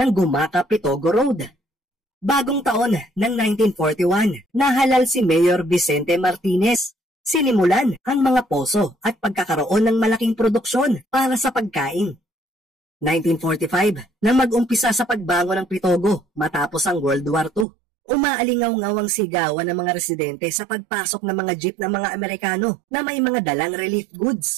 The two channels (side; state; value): left; drops out; at 17.7 s